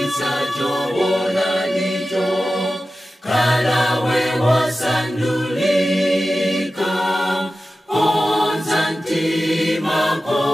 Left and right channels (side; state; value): both; normal; correlation 0.94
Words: choona nicho Kalawe wasandulika onzantimako